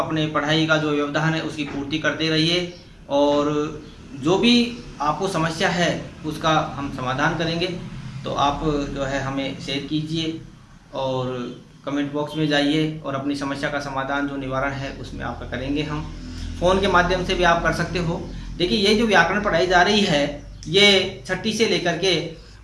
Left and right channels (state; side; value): identical; both; correlation 1.00